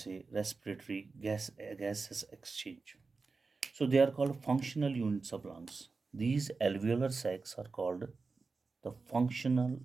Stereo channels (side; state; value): left; quieter; 4.2 dB